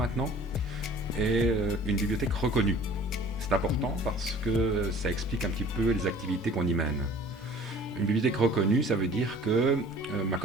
est une bibliothèque reconnue. C'est important parce que ça explique un petit peu les activités qu'on y mène. Une bibliothèque reconnue, ça veut dire que ma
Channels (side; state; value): both; normal; correlation 0.48